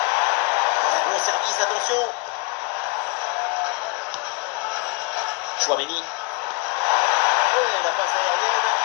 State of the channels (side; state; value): right; quieter; 27.1 dB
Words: Bon service, attention. Tchouaméni. Et la passe aérienne.